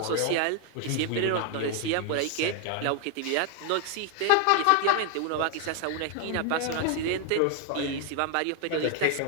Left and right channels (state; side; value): different; both; correlation 0.00